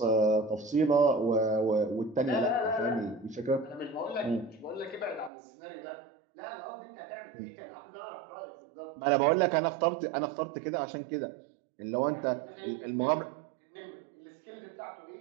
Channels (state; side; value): drops out; left; at 5.3 s